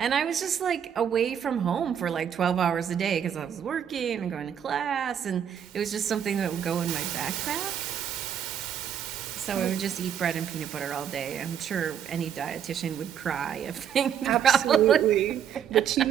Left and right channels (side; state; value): left; quieter; 8.8 dB